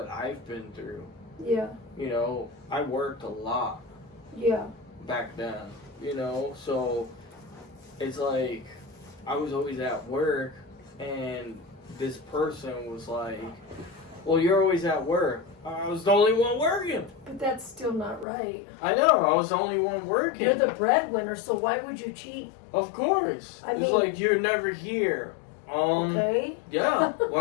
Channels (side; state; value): right; drops out; at 18.2 s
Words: I've been through. Yeah. You know, I worked a lot. Yeah. Back then, you know, so it's like I was always at work, and this person was like, well, you're always at work. I was the only one working. But that's still not right. I know, I was the only one working. You're the breadwinner, so why would you cheat? Of course. I it's mean, like, you're never here. Okay. Yeah,